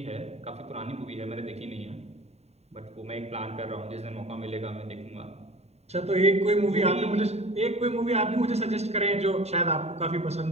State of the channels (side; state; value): left; late; 0.31 ms